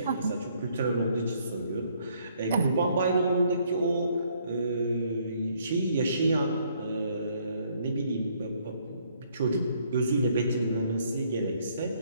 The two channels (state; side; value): inverted; both; correlation -0.67